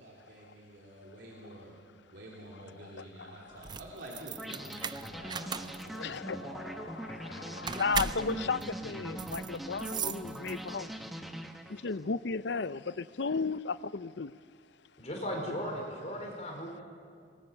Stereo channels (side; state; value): both; normal; correlation -0.03